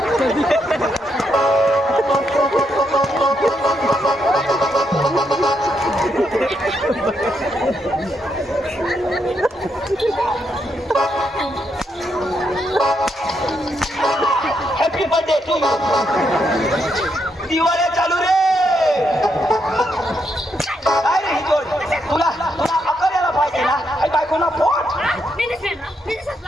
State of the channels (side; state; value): both; normal; correlation 0.79